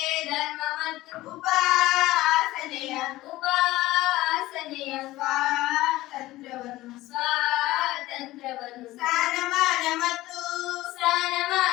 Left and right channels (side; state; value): right; quieter; 17.3 dB